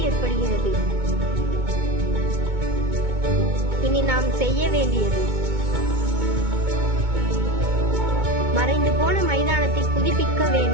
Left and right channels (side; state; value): left; late; 2.2 ms